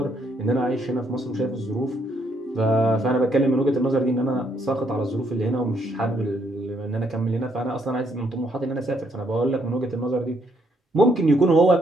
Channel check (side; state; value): both; normal; correlation 0.72